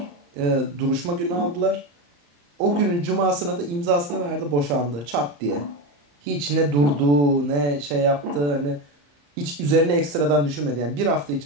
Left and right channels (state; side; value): late; left; 35 ms